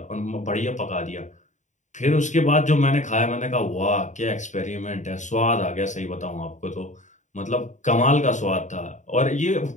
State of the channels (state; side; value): late; right; 0.35 ms